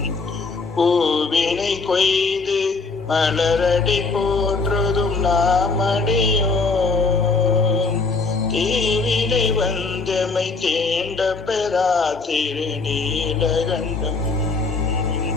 பூவினை கொய்து மலரடி போற்றுதும் நாமடியோ தீவினை வந்தமை தேண்ட பெறா திருநீலகண்டம்.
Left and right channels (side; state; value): right; quieter; 4.1 dB